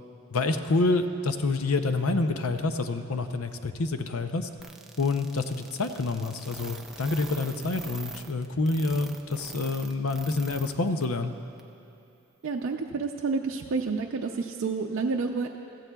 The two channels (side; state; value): both; normal; correlation 0.51